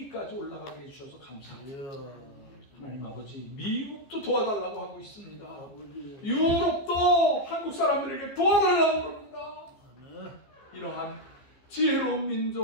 올라가게 해주셔서 감사합니다. 하나님 아버지 미국도 도와달라고 하고 있습니다. 유럽도 한국 사람들에게 도와달라고 합니다. 이러한 지혜로운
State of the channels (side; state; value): right; late; 15 ms